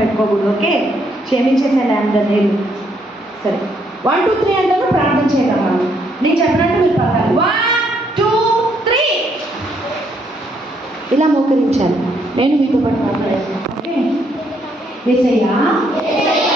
ఓకే, క్షమించేసాను అందరినీ. సరే, 1 2 3 అంటారు, ప్రార్థన చేయగలమా? నేను చెప్పినట్టు మీరు పలకాలి. 1 2 3 ఇలా మోకరించాలి. నేను మీతో పాటు మాట్లాడేస్తాను. ఓకే? యేసయ్యా,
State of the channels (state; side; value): normal; both; correlation 0.72